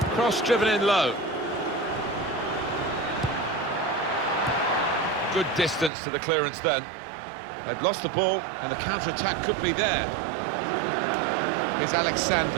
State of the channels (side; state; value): left; drops out; at 5.9 s